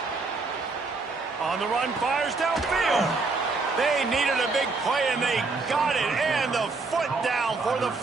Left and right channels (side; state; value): left; quieter; 3.9 dB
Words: On the run, fires downfield. They needed a big play, and they got it. And the foot down for the